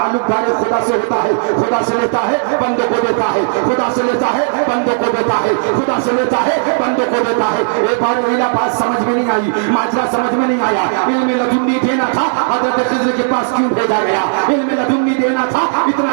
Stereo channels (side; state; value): left; silent; digital silence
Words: دار خدا سے ہوتا ہے، خدا سے لیتا ہے بندوں کو دیتا ہے، خدا سے لیتا ہے بندوں کو دیتا ہے، خدا سے لیتا ہے بندوں کو دیتا ہے. ایک بار ویلا بات سمجھ میں نہیں آئی، ماجرا سمجھ میں نہیں آیا. علم لدنی دینا تھا حضرت خضر کے پاس کیوں بھیجا گیا؟ علم لدنی دینا تھا